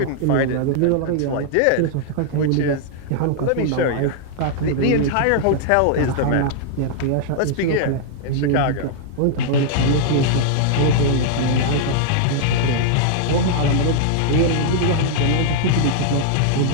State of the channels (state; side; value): different; both; correlation -0.01